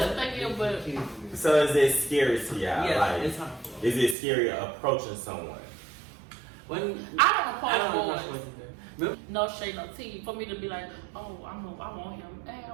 what they give, but. So is it scary to y'all? Yeah, like, it's harmful. Is it scary approaching someone? I don't approach boys. No shade, no tea. For me to be like, oh, I want him. Hey,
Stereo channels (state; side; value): drops out; left; at 4.2 s